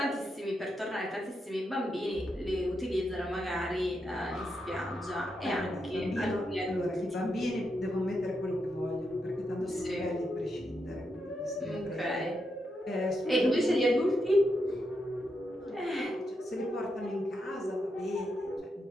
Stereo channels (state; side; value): normal; both; correlation 0.83